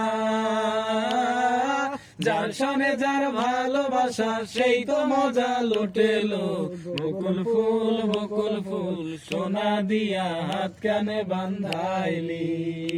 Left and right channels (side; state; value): both; identical; correlation 1.00